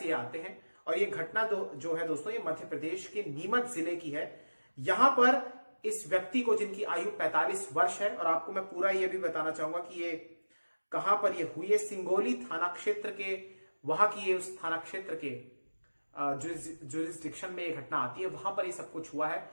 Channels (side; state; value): both; inverted; correlation -1.00